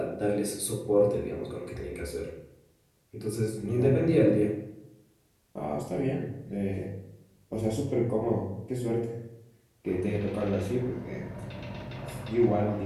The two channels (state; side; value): identical; both; correlation 1.00